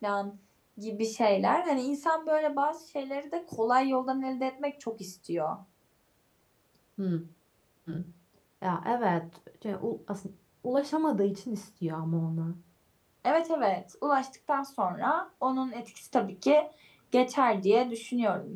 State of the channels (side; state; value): both; identical; correlation 1.00